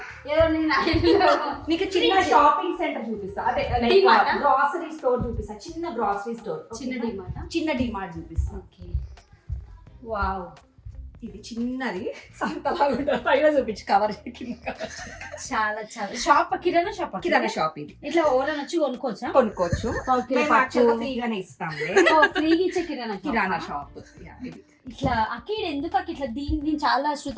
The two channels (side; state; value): both; identical; correlation 1.00